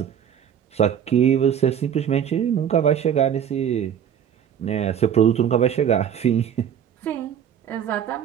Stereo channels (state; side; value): quieter; left; 8.9 dB